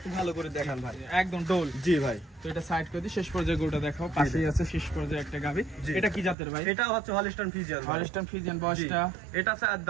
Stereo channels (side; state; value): left; drops out; at 6.4 s